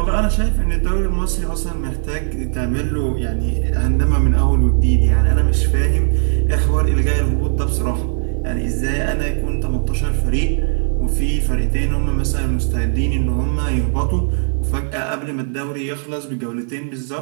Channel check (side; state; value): left; silent; digital silence